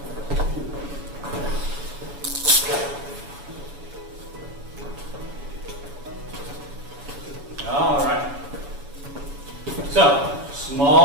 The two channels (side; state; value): left; late; 7.1 ms